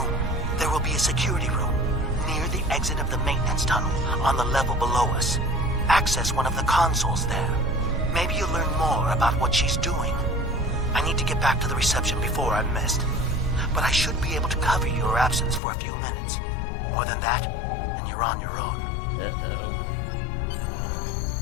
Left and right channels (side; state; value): right; drops out; at 15.6 s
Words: There will be a security room, near the exit of the maintenance tunnel, on the level below us. Access one of the consoles there. Maybe you'll learn more about what she's doing. I need to get back to the reception before I'm missed. But I should be able to cover your absence for a few minutes. More than that, and you're on your own. Uh-oh.